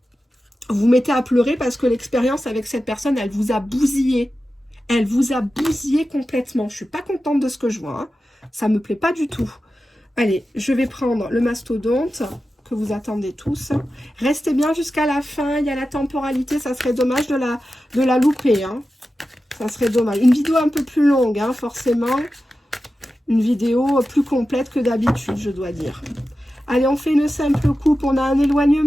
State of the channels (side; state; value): both; normal; correlation 0.93